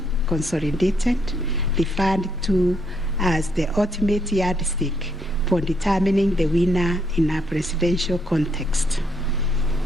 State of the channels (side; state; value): both; normal; correlation 0.73